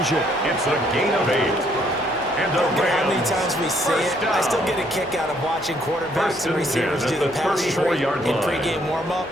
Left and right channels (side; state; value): both; normal; correlation 0.68